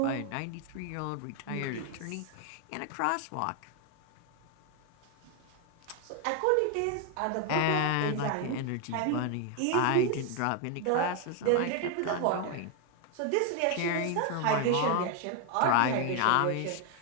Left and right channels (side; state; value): both; different; correlation 0.01